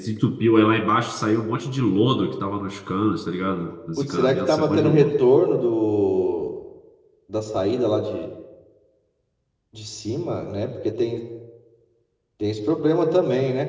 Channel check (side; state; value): both; identical; correlation 1.00